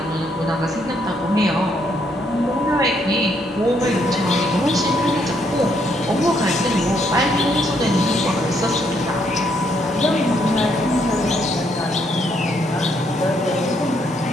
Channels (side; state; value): both; normal; correlation 0.72